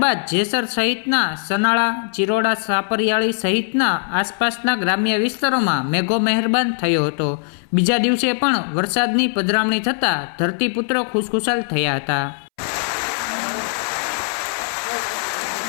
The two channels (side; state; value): right; silent; 64 dB below the other